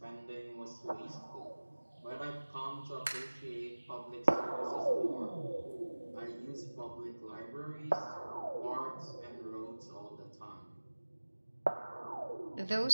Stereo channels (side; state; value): both; inverted; correlation -1.00